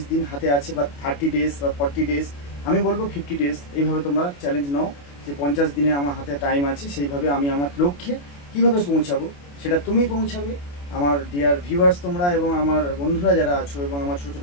দিন হাতে আছে, বা 30 ডেজ বা 40 ডেজ, আমি বলবো 50 ডেজ। এইভাবে তোমরা চ্যালেঞ্জ নাও যে 50 দিনে আমার হাতে টাইম আছে, সেইভাবে আমি আমার লক্ষ্যে কীভাবে পৌঁছাবো সেটা তুমি পৌঁছাবে। আমার ডিয়ার ভিউয়ার্স তোমরা এবং আমার বন্ধুরা যারা আছো এবং আমার ছোটো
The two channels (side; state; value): right; late; 28 ms